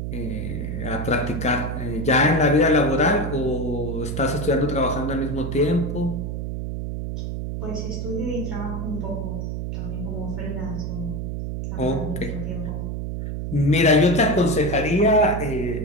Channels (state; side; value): noise; right; hum, 4 dB below the sound